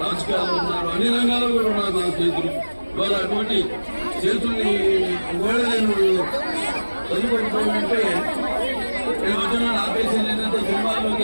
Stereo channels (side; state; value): both; inverted; correlation -1.00